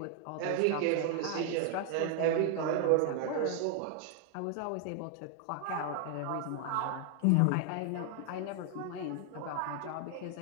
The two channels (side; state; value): both; different; correlation 0.00